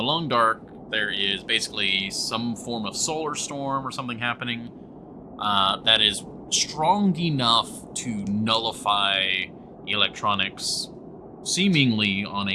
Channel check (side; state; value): both; identical; correlation 1.00